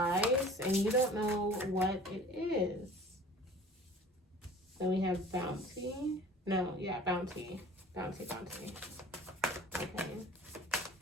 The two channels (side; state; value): both; normal; correlation 0.45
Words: and you don't know what it is. Then we have bounty. No, yeah, bounty. Bounty. Okay.